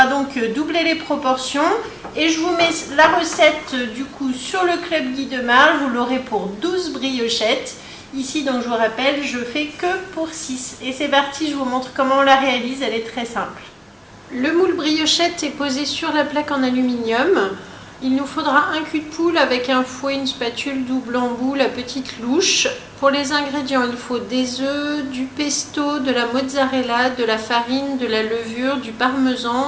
donc doubler les proportions. Et je vous mets la recette du coup sur le Club Guy de Marle. Vous l'aurez pour 12 briochettes. Ici, donc je vous rappelle, je fais que pour 6. Et c'est parti, je vous montre comment on la réalise, elle est très simple. Le moule briochette est posé sur la plaque en aluminium. Il nous faudra un cul de poule avec un fouet, une spatule, double embout, la petite louche. Pour les ingrédients, il faut des œufs, du pesto, de la mozzarella, de la farine, de la levure, du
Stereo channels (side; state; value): both; identical; correlation 1.00